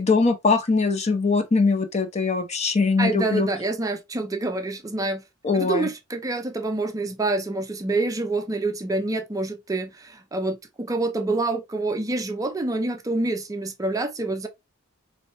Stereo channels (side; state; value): both; normal; correlation 0.57